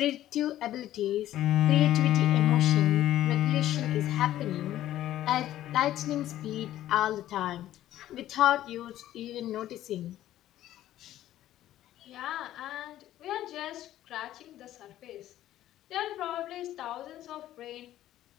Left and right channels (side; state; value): right; quieter; 13.3 dB